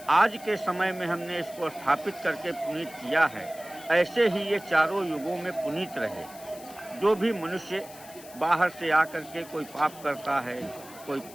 आज के समय में हमने इसको स्थापित करके पुनीत किया है, ऐसे ही ये चारों युगों में पुनीत रहे। जो भी मनुष्य बाहर से आकर के कोई पाप करता है, कोई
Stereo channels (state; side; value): noise; left; hiss, 18 dB below the sound